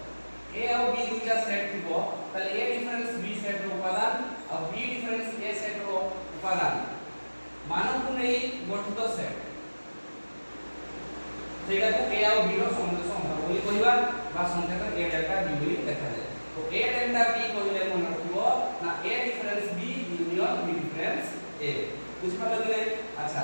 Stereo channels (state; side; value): inverted; both; correlation -1.00